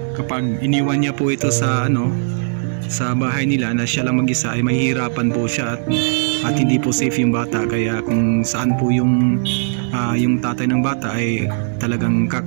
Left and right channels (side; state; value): left; silent; digital silence